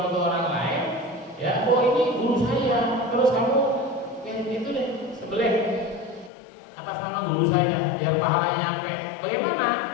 untuk orang lain, ya, oh ini guru saya, terus kamu itu deh sebelih atas nama guru saya, biar pahalanya nyampe. Bagaimana?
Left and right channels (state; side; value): drops out; right; at 6.3 s